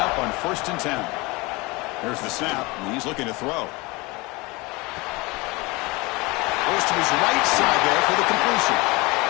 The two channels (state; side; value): quieter; right; 24.3 dB